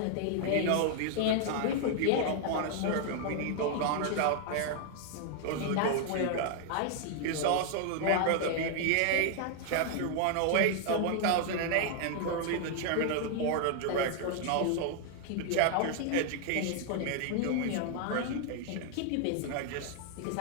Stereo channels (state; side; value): different; both; correlation 0.00